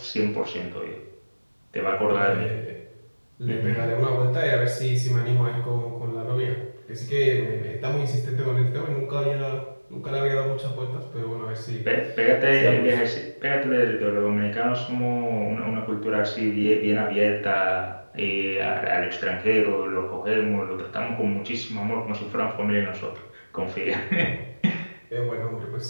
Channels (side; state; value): both; inverted; correlation -1.00